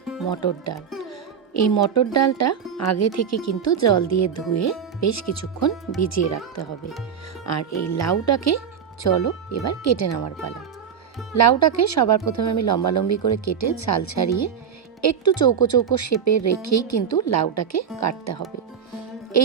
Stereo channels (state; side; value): quieter; left; 7.6 dB